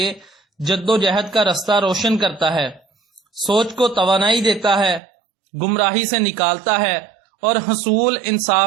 جد و جہد کا رستہ روشن کرتا ہے، سوچ کو توانائی دیتا ہے، گمراہی سے نکالتا ہے اور حصول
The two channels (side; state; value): left; drops out; at 5.0 s